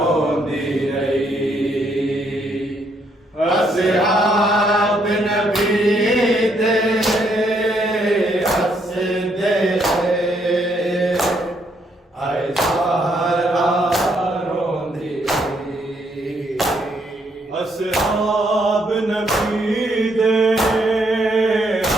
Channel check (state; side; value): normal; both; correlation 0.73